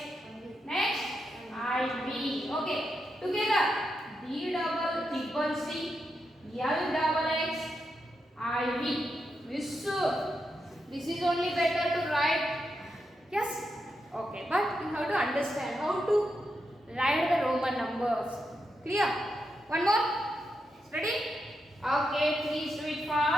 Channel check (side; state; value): both; normal; correlation 0.85